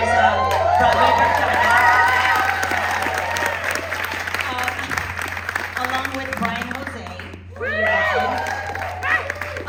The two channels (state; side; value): identical; both; correlation 1.00